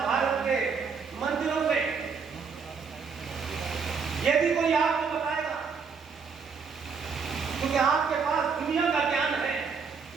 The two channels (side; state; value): left; quieter; 5.6 dB